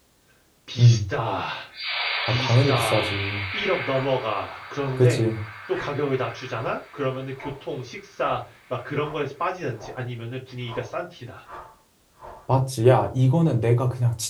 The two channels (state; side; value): identical; both; correlation 1.00